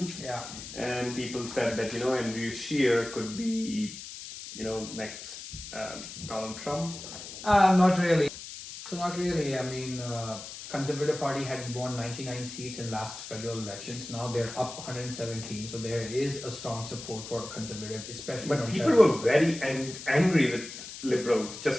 And people said that, Andrew Scheer could be, next Donald Trump. Not really. So not really. I mean, Conservative Party had won 99 seats in last federal elections. Now they're up 117. So there is a strong support for Conservative, especially. But people were very angry with Liberals.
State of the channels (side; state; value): left; noise; hiss, 11 dB below the sound